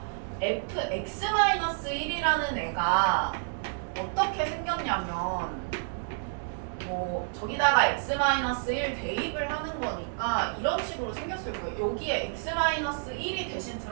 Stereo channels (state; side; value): silent; left; digital silence